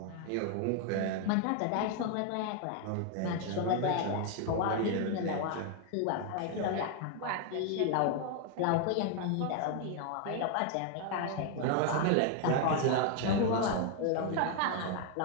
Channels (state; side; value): different; both; correlation 0.00